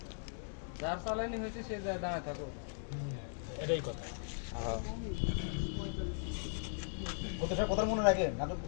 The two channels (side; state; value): right; silent; digital silence